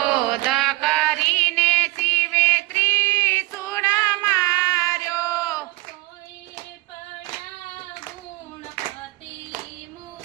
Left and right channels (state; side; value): quieter; left; 21.8 dB